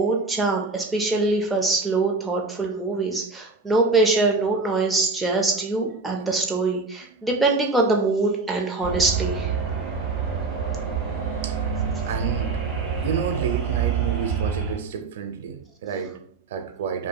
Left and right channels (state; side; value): quieter; left; 3.6 dB